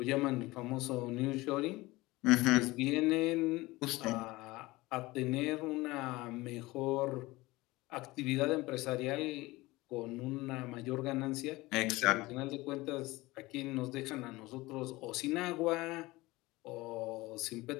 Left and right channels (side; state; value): right; quieter; 20.5 dB